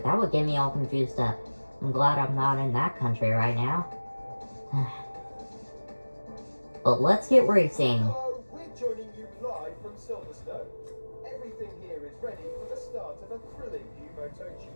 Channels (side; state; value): both; inverted; correlation -1.00